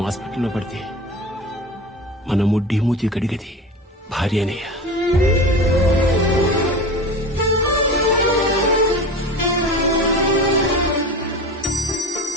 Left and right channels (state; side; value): normal; both; correlation 0.31